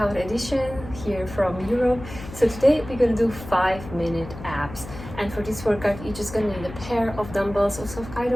edition here from Europe. So today we're gonna do 5-minute abs, and for this workout you're just gonna need a pair of dumbbells of some kind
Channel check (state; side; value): noise; left; hum, 13 dB below the sound